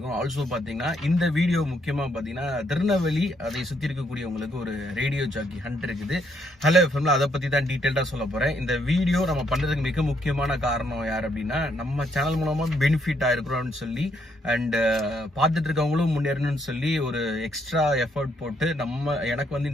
ஆல்சோ பார்த்தீங்கன்னா இந்த வீடியோ முக்கியமாக பார்த்தீங்கன்னா திருநெல்வேலி அதை சுற்றி இருக்கக்கூடியவங்களுக்கு ஒரு ரேடியோ ஜாக்கி ஹண்ட் இருக்குது. ஹலோ எஃப்எம்ல அதை பற்றி தான் டீட்டெயில்டாக சொல்ல போகிறேன். இந்த வீடியோ நம்ம பண்ணுறதுக்கு மிக முக்கியமான காரணம் யார் அப்படின்னா, நம்ம சேனல் மூலமாக பெனிஃபிட் ஆயிருக்கிறோம்னு சொல்லி அண்ட் பார்த்துட்டு இருக்கவங்களும் முன்னேறணும்னு சொல்லி ஒரு எக்ஸ்ட்ரா எஃபர்ட் போட்டு எனக்கு வந்து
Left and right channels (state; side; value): normal; both; correlation 0.73